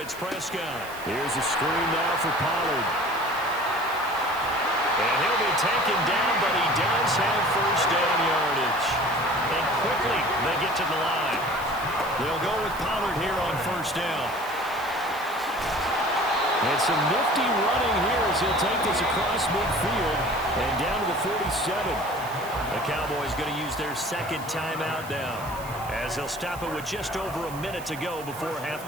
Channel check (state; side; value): noise; right; hiss, 17 dB below the sound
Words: Prescott. Here's a screen now for Pollard. And he'll be taken down, but he does have 1st down yardage. And quickly, they get to the line. They'll go with Pollard here on 1st down. And some nifty running here as he'll take this across midfield and down to the 47. The Cowboys going to use their 2nd timeout now as they'll stop it with just over a minute to go before